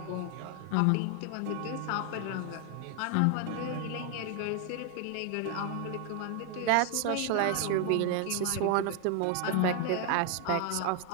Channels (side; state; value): both; different; correlation 0.01